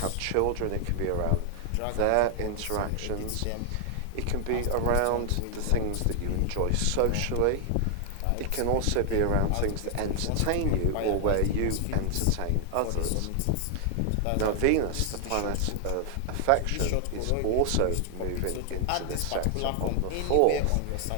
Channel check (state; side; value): different; both; correlation 0.00